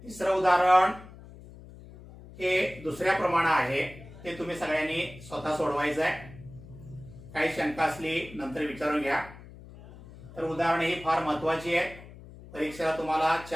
तिसरं उदाहरण हे दुसऱ्या प्रमाणे आहे. ते तुम्ही सगळ्यांनी स्वतः सोडवायचं आहे. काही शंका असली नंतर विचारून घ्या. तर उदाहरण ही फार महत्त्वाची आहे. परीक्षेला तुम्हाला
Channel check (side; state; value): left; noise; hum, 18 dB below the sound